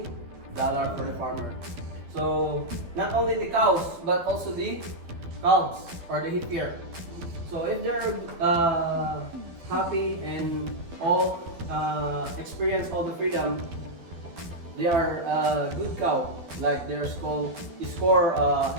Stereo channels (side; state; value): left; late; 12 ms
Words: dollar for the farmer. So not only the cows but also the calves or the heifer. So if they're happy and all experience all the freedom, they are a good cow. Like their score